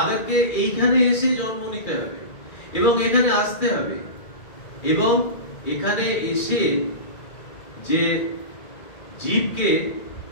এইখানে এসে জন্ম নিতে হবে এবং এখানে আসতে হবে এবং এখানে এসে যে জীবকে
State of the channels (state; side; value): late; right; 2.3 ms